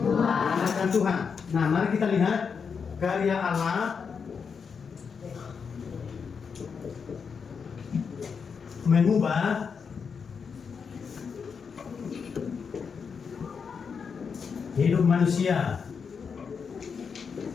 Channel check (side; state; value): right; quieter; 6.0 dB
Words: Mengandalkan Tuhan. Nah, mari kita lihat karya Allah mengubah hidup manusia,